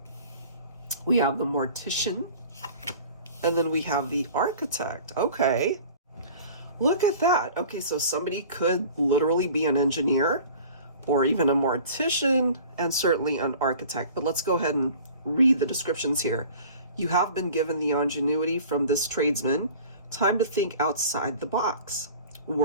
we have the Mortician, and then we have the Architect. Okay, look at that. Okay, so somebody could literally be an engineer or even a mortician and certainly an architect. But let's go ahead and read the descriptions here. You have been given the ingenuity from this tradesman. Time to think outside the box.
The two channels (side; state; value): both; inverted; correlation -0.44